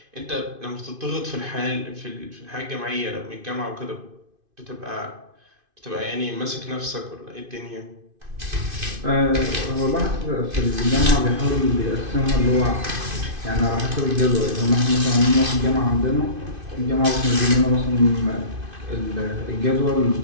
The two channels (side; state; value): left; late; 2.5 ms